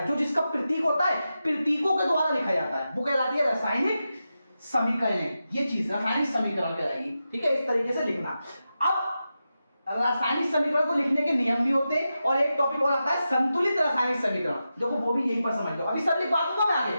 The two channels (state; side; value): inverted; both; correlation -0.90